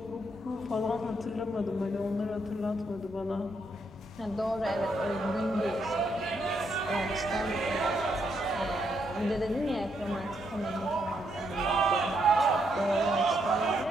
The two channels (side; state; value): both; normal; correlation 0.77